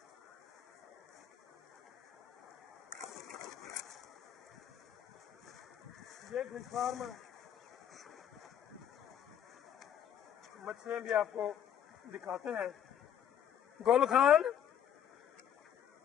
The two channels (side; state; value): right; quieter; 9.5 dB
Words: ये फिश फार्म है, मछलियाँ भी आपको दिखाते हैं। गोल खान,